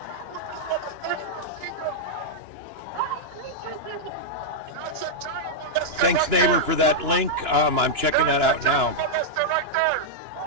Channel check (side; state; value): left; late; 2.9 ms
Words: That's a child molester. Thanks, right neighbor, there. for that link. I'm checking that out now. Child molester right there.